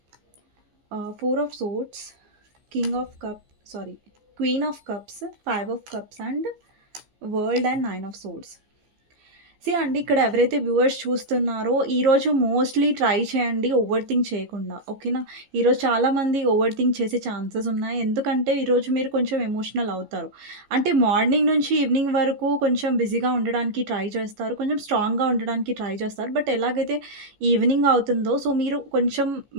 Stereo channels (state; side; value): late; left; 15 ms